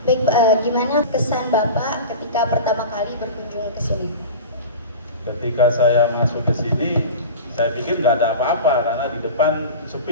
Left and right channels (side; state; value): both; inverted; correlation -0.32